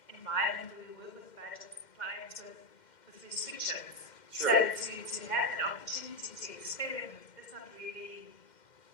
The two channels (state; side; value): late; right; 2.1 ms